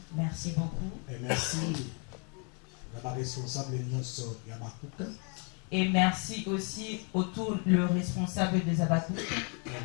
Merci beaucoup. Et merci à la responsable Yabakouk. Et merci aussi autour le responsable des Abakouk. Et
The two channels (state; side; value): quieter; right; 37.3 dB